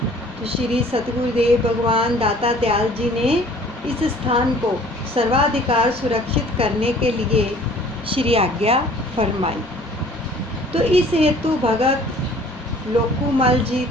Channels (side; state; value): both; normal; correlation 0.52